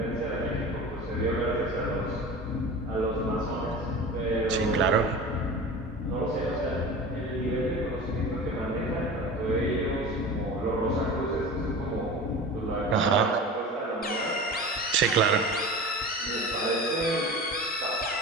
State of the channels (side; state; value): both; normal; correlation 0.34